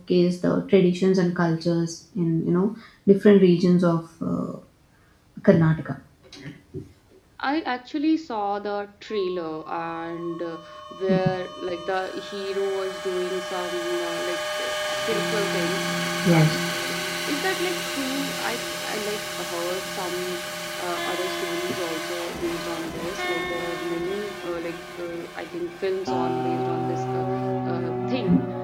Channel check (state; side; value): identical; both; correlation 1.00